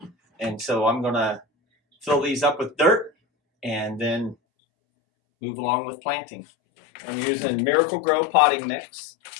and so I'm gonna fill these up with dirt and then move along with planting. I'm using Miracle Grow potting mix,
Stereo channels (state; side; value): drops out; right; at 4.4 s